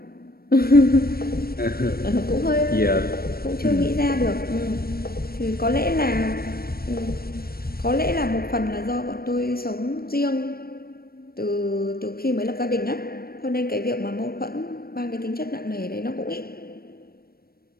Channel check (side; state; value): right; late; 0.44 ms